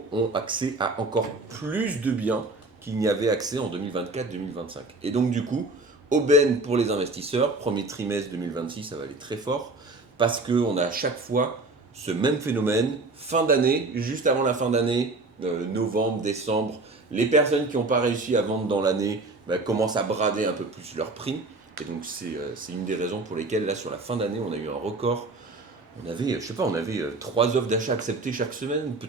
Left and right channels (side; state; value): left; quieter; 3.2 dB